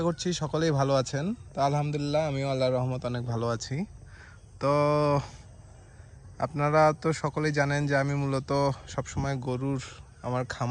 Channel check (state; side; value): identical; both; correlation 1.00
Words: করছি সকলেই ভালো আছেন। তো আলহামদুলিল্লাহ আমিও আল্লাহর রহমত অনেক ভালো আছি। তো আপনারা তো সকলেই জানেন যে আমি মূলত সবসময় গরুর আমার